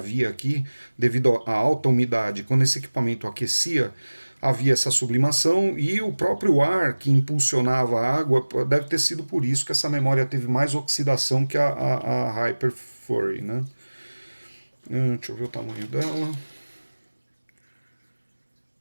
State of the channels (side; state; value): both; inverted; correlation -1.00